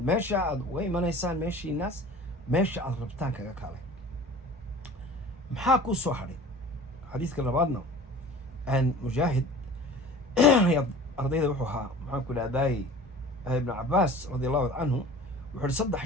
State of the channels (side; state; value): both; normal; correlation 0.42